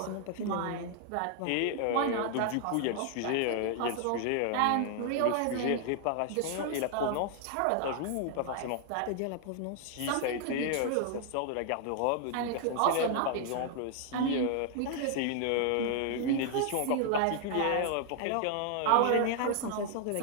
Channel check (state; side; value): different; both; correlation 0.00